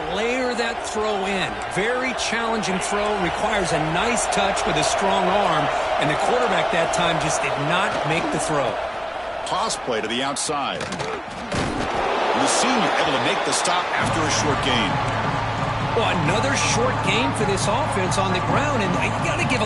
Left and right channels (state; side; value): identical; both; correlation 1.00